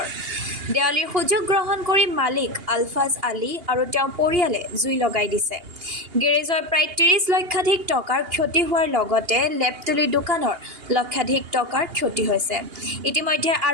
দেৱালীৰ সুযোগ গ্ৰহণ কৰি মালিক আলফাজ আলী আৰু তেওঁৰ পৰিয়ালে জুই লগাই দিছে। গেৰেজৰ প্ৰায় ৩০ লক্ষাধিক টকাৰ ক্ষতি হোৱাৰ লগতে লেপটলি দোকানৰ লক্ষাধিক টকাৰ ক্ষতি হৈছে। ইতিমধ্যে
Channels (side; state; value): left; late; 2.8 ms